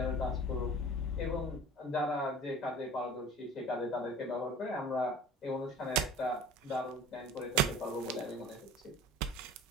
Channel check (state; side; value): normal; both; correlation 0.43